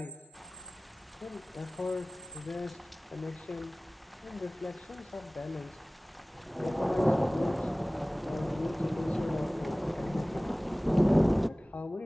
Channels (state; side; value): normal; both; correlation 0.98